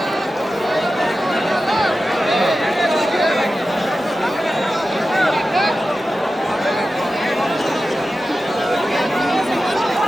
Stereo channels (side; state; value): both; normal; correlation 0.93